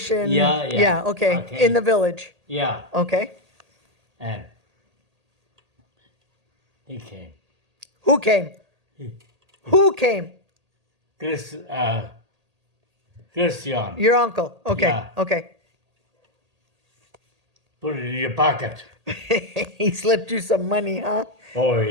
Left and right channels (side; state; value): left; late; 1.8 ms